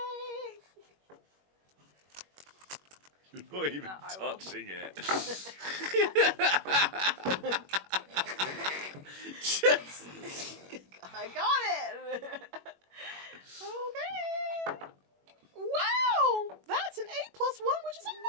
You're not even I will. touching it. Just... I got it. Okay. Wow, that's an 8+1, which is a 9.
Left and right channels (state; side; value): late; left; 21 ms